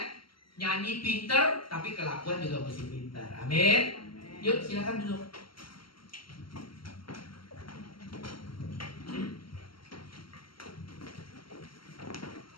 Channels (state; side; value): late; right; 0.73 ms